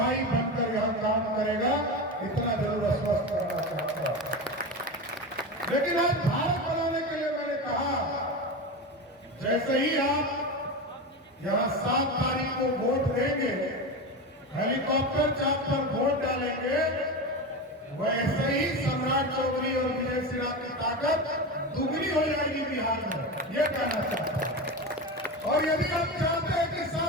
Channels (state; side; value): normal; both; correlation 0.22